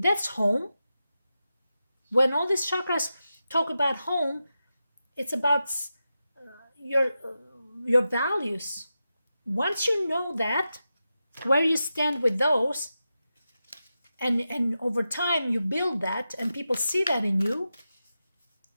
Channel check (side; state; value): both; inverted; correlation -0.90